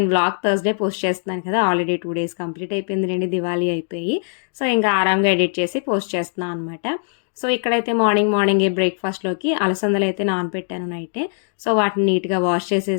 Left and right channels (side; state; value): right; silent; 65 dB below the other